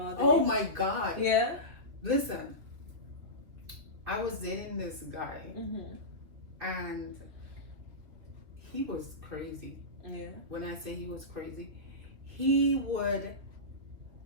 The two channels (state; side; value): late; left; 2.9 ms